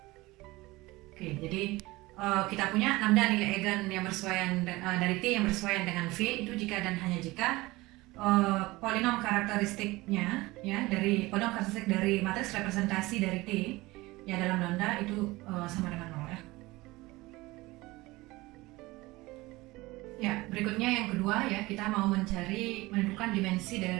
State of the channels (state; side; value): quieter; left; 20.6 dB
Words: Oke, jadi kita punya lambda nilai eigen yang bersesuaian dari T yang bersesuaian dengan V itu jika dan hanya jika polinom karakteristiknya ya, dari polinom karakteristik dari matriks representasi dari T ya dalam lambda itu sama dengan 0 ya. Ya, berikutnya yang kedua ya, kita mau menentukan dimensi